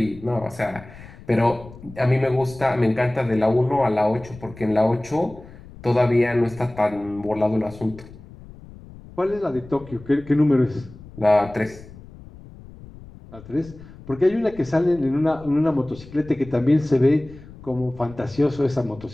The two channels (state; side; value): noise; left; rumble, 19 dB below the sound